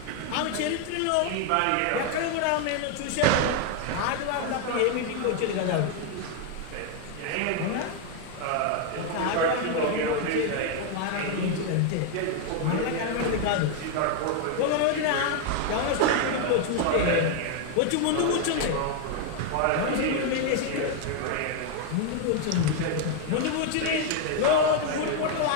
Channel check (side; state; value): both; different; correlation 0.00